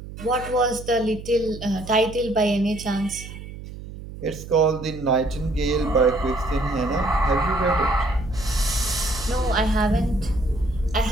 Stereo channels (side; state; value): right; noise; hum, 13 dB below the sound